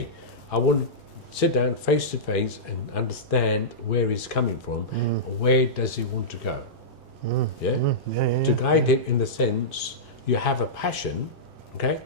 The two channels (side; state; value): both; normal; correlation -0.14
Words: I want to sit down face to face and understand where he's coming from, where does he want to go. To guide him in the sense, you have a passion, okay?